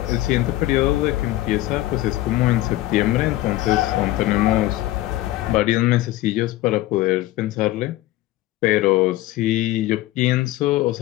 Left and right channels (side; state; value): right; quieter; 16.2 dB